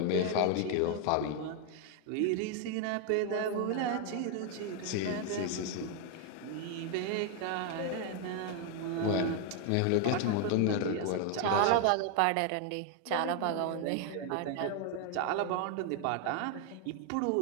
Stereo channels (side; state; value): both; different; correlation 0.01